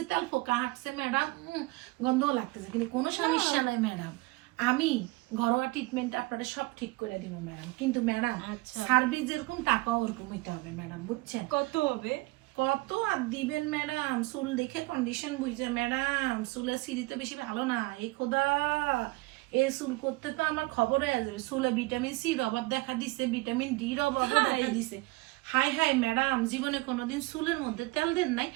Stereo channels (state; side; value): quieter; left; 23.0 dB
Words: তেল ফোকা হাঁটছে ম্যাডাম, গন্ধও লাগতেছে, কিন্তু কোনো সমস্যা নাই ম্যাডাম। আমি ঘরোয়া ট্রিটমেন্ট আপনারা সব ঠিক করে দিব ম্যাডাম, কিন্তু ম্যাডাম সার্ভিস যেরকম টাকাও ওরকম হইতে হবে ম্যাডাম, বুঝছেন? কত হবে? কত আর দিবেন ম্যাডাম? চুল দেখে কন্ডিশন বুঝছে ম্যাডাম, চুলের সিঁড়ি তো বেশি ভালো না। এই খোদা, এই চুল করতে তো আমার খবর হয়ে যাবে। চুলে ভিটামিন সির অভাব দেখা দিছে, ভিটামিন ডির অভাব দেখা দিছে। হাই হাই ম্যাডাম, জীবনে কোনোদিন চুলের মধ্যে তেল দেন নাই?